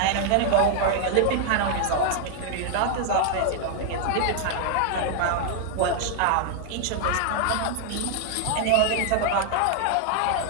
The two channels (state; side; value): different; both; correlation 0.00